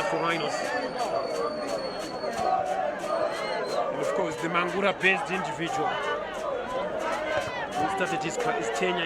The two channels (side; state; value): both; identical; correlation 1.00